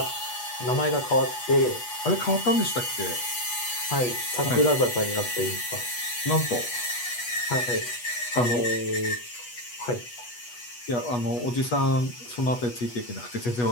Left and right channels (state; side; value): late; right; 8.2 ms